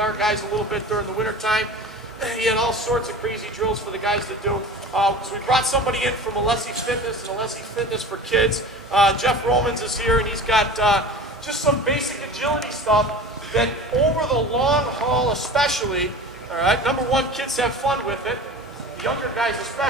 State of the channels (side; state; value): both; normal; correlation 0.37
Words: guys a little bit during the winter time. He had all sorts of crazy drills for the guys to do. So we brought somebody in from Alessi Fitness and Alessi Fitness for Kids. Jeff Romans is here, and he's got just some basic agility stuff that over the long haul especially, all right, number one, kids have fun with it. The younger guys